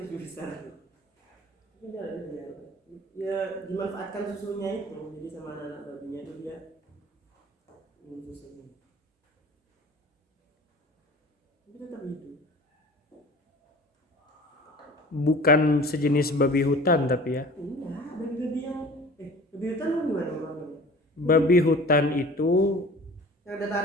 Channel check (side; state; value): both; normal; correlation 0.43